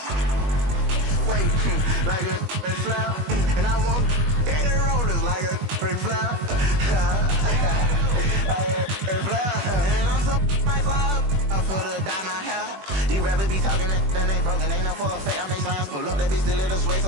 Wait, like a big flower. And I want Daddy Rollers, like a big flower. And I'm so my flower. I'm for the dye my hair. These rappers be talking and then they broken. Ain't no for a fact. I make slimes pull up. That bitch still in the sway,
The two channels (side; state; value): left; late; 21 ms